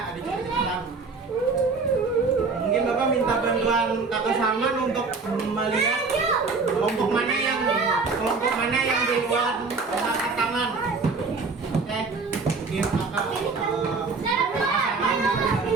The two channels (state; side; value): quieter; left; 4.3 dB